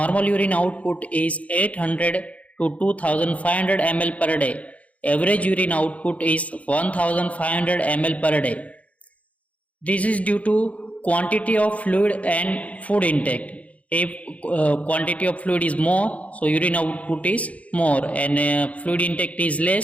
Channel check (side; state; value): right; late; 0.067 ms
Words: urine output is 800 to 2500 ml per day. Average urine output is 1500 ml per day. This is due to quantity of fluid and food intake. If quantity of fluid is more, so urine output is more, and fluid intake is